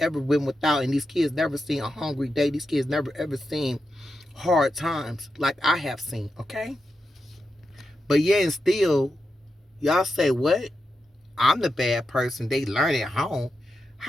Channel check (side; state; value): both; normal; correlation 0.88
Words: went without, and these kids never seen a hungry day. These kids never ever seen hard times like I have seen, okay? But yeah, and still, y'all say, "What? I'm the bad person. They learn at home."